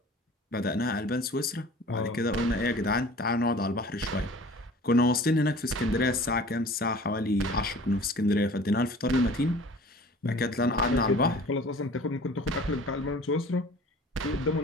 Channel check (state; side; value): normal; both; correlation 0.45